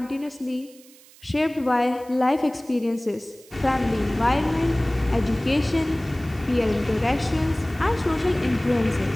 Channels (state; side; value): noise; right; hiss, 24 dB below the sound